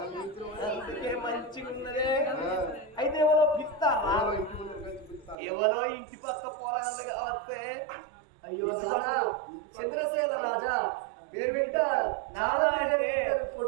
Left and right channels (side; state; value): left; drops out; at 5.4 s